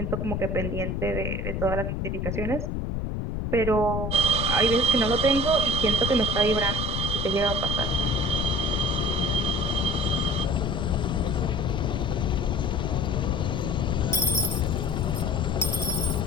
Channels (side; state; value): left; noise; rumble, 1 dB below the sound